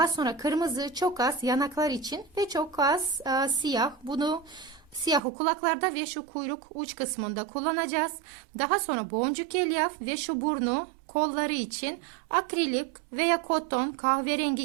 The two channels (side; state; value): left; drops out; at 5.2 s